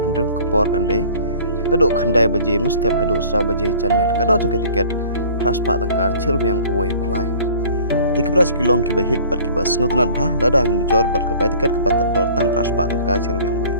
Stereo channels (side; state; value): both; inverted; correlation -0.49